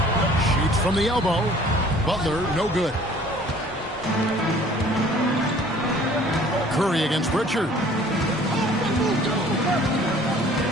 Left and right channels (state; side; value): normal; both; correlation 0.53